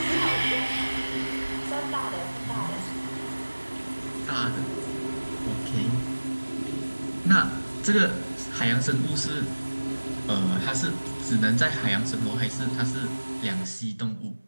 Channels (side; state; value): both; inverted; correlation -1.00